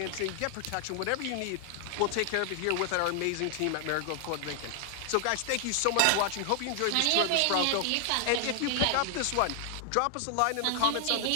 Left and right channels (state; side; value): different; both; correlation 0.00